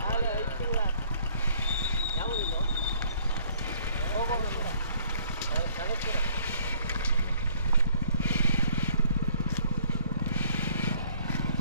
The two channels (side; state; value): both; inverted; correlation -0.61